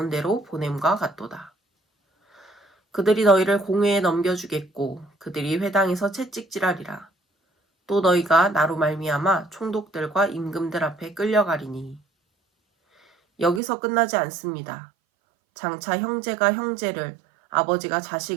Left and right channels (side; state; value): left; drops out; at 13.6 s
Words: 보냄과 같도다. 그들이 너희를 공회에 넘겨주겠고 그들이 회당에서 채찍질하리라. 또 너희가 나로 말미암아 총독들과 임금들 앞에 끌려가리니. 여기서 끝나지 않습니다. 장차 형제가 형제를 아버지가